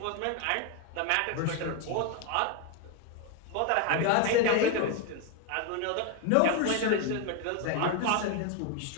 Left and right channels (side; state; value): both; different; correlation 0.01